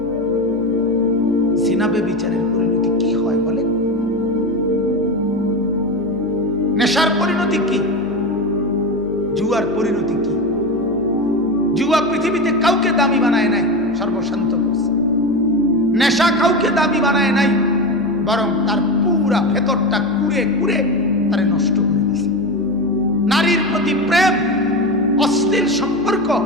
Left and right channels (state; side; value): noise; right; hum, 17 dB below the sound